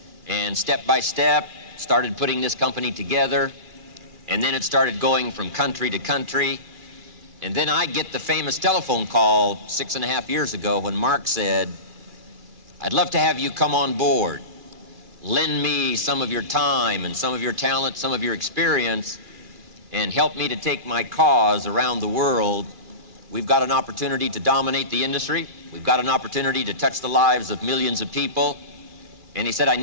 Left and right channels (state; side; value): late; left; 2.3 ms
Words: and step by step started putting this company together. And then it started going from country to country. And then I get the famous telephone call 6.5 years ago when Mark said, I'd love to have you come on board. Lend me some of your time and some of your talent, some of your experience, and help me to take my cause around the world. We've got an opportunity to dominate the industry. We've got an opportunity to touch the lives of millions of people. And he said, I